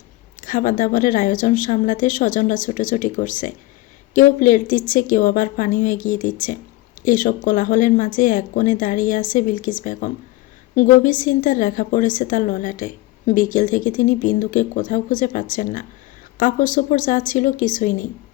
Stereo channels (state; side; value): quieter; right; 18.4 dB